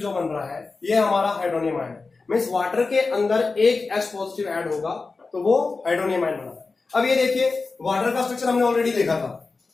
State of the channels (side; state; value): right; quieter; 4.0 dB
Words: जो बन रहा है ये हमारा हाइड्रोनियम आयन है, मीन्स वाटर के अंदर एक H पॉजिटिव ऐड होगा तो वो हाइड्रोनियम आयन बना है। अब ये देखिए वाटर का स्ट्रक्चर हमने ऑलरेडी देखा था,